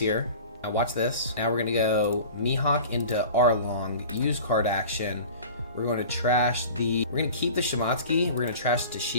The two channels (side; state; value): both; inverted; correlation -0.40